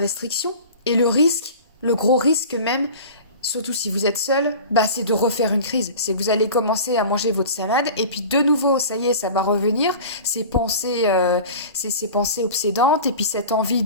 et le risque, le gros risque même, surtout si vous êtes seul, c'est de refaire une crise. C'est que vous allez commencer à manger votre salade et puis de nouveau, ça y est, ça va revenir. Ces pensées obsédantes et puis cette envie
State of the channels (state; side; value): inverted; both; correlation -0.37